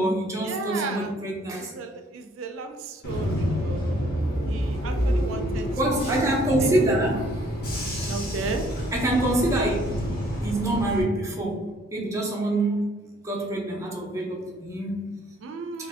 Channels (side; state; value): both; normal; correlation 0.62